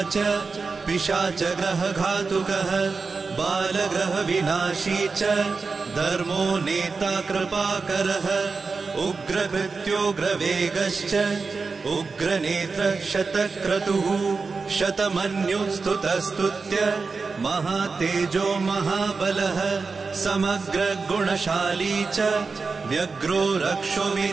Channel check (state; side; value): quieter; left; 4.5 dB